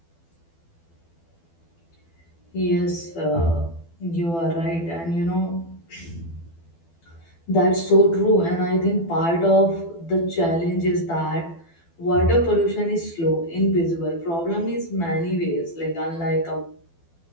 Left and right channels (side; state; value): right; late; 12 ms